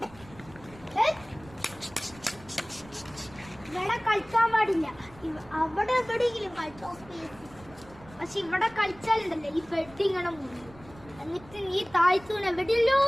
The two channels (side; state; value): right; noise; rumble, 21 dB below the sound